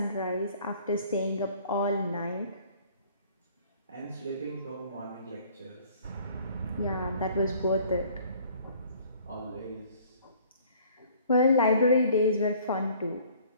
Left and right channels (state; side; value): inverted; both; correlation -0.55